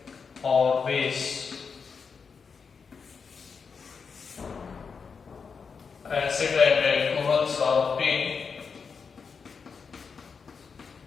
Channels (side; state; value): right; quieter; 5.6 dB